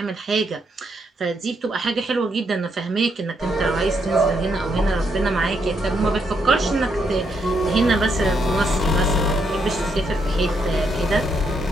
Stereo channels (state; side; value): normal; both; correlation 0.77